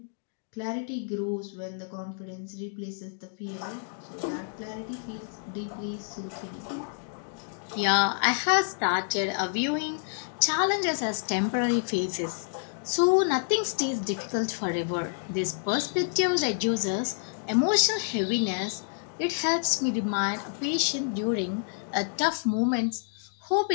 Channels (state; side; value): silent; right; digital silence